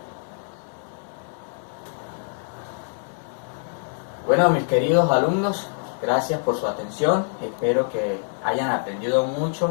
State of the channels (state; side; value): silent; right; digital silence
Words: Bueno, mis queridos alumnos, Gracias por su atención, espero que hayan aprendido